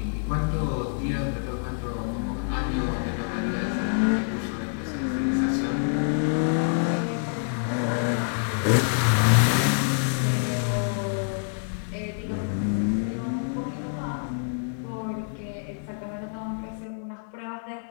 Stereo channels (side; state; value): right; silent; 60 dB below the other